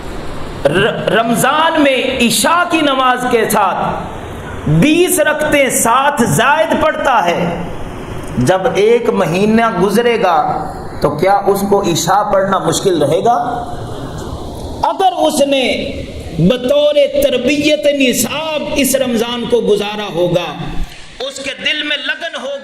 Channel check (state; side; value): identical; both; correlation 1.00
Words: رمضان میں عشاء کی نماز کے ساتھ 20 رکعتیں ساتھ زائد پڑھتا ہے، جب ایک مہینہ گزرے گا تو کیا اس کو عشاء پڑھنا مشکل رہے گا؟ اگر اس نے بطور تربیت نصاب اس رمضان کو گزارا ہوگا، اس کے دل میں لگن